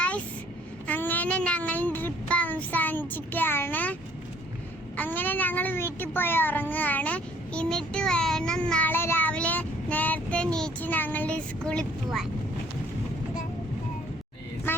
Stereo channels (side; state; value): both; normal; correlation 0.59